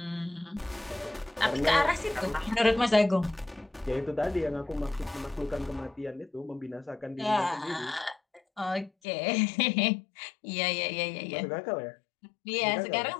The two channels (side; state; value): right; drops out; at 8.9 s